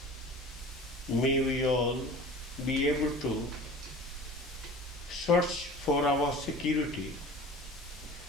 May we all be able to search for our security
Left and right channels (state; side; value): normal; both; correlation 0.40